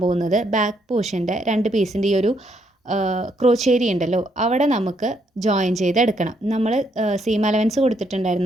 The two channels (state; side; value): normal; both; correlation 0.73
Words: പോകുന്നത് ബാക്ക് പോർഷൻ്റെ 2 പീസിൻ്റെ ഈ ഒരു ക്രോച്ചേരി ഉണ്ടല്ലോ അവിടെ നമുക്ക് ജോയിൻ ചെയ്തെടുക്കണം. നമ്മൾ സീം അലവൻസ്